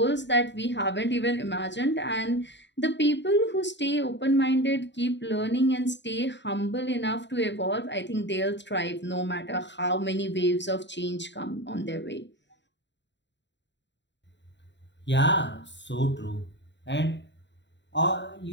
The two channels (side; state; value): right; late; 0.52 ms